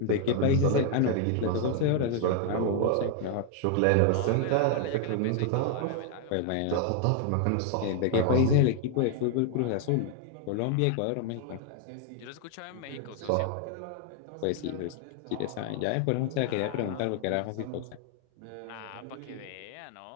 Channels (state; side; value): different; both; correlation 0.00